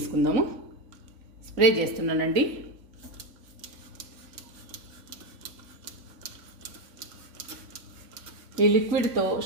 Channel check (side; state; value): left; late; 3.5 ms